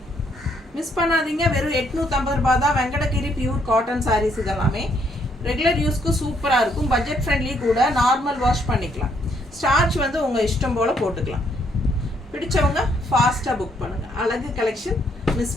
மிஸ் பண்ணாதீங்க. வெறும் 850 ரூபா தான். வெங்கடகிரி பியூர் காட்டன் சாரீஸ் இதெல்லாமே ரெகுலர் யூஸ்க்கு சூப்பராக இருக்கும். பட்ஜெட் ஃப்ரெண்ட்லி கூட. நார்மல் வாஷ் பண்ணிக்கலாம். ஸ்டார்ச் வந்து உங்கள் இஷ்டம் போல் போட்டுக்கலாம். பிடிச்சவங்க ஃபாஸ்ட்டாக புக் பண்ணுங்கள். அழகு கலெக்ஷன்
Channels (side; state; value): both; normal; correlation 0.71